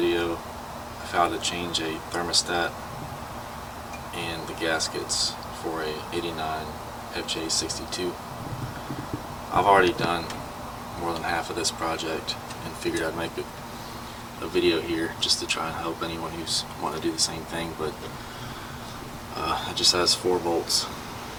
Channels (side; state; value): both; identical; correlation 1.00